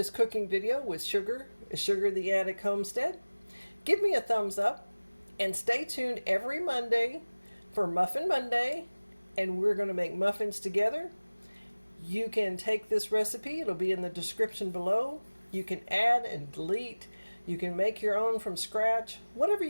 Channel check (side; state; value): both; inverted; correlation -1.00